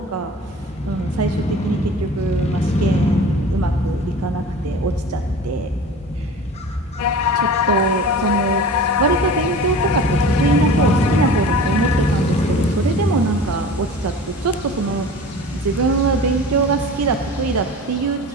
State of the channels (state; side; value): normal; both; correlation 0.38